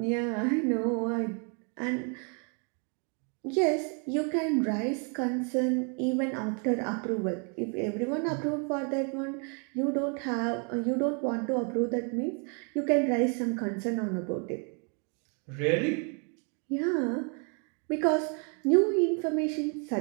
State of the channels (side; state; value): left; quieter; 38.1 dB